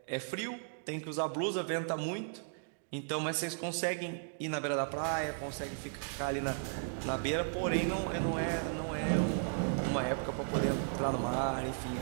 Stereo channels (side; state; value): left; silent; digital silence